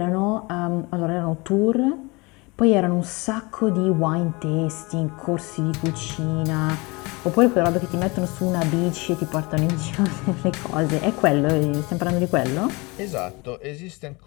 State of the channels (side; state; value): right; quieter; 26.0 dB